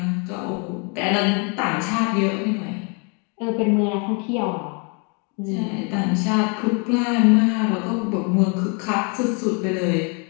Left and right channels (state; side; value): quieter; right; 35.3 dB